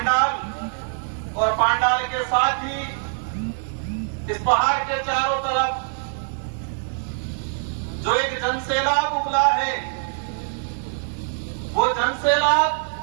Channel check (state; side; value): silent; left; digital silence